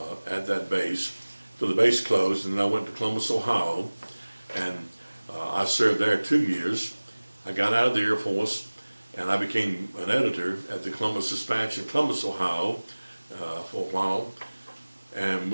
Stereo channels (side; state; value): both; inverted; correlation -1.00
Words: at that base till the base closed, and then I went to Columbus, Ohio, and I served there 2 years. I got out of the Air Force, and I became an editor at the Columbus Dispatch in Columbus, Ohio, for a while. And